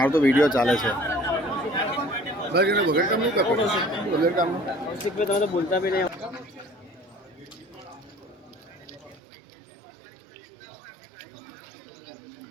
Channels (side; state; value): left; drops out; at 9.2 s